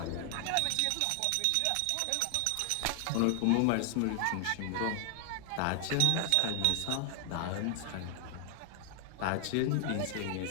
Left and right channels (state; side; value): different; both; correlation 0.00